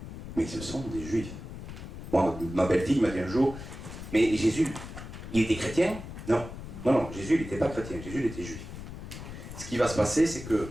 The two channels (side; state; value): left; noise; rumble, 10 dB below the sound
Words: mais ce sont des juifs. Moi, ma belle-fille m'a dit un jour, mais Jésus, il était chrétien ? Non, Jésus, il n'était pas chrétien, Jésus, il était juif. Ce qui va se passer, c'est que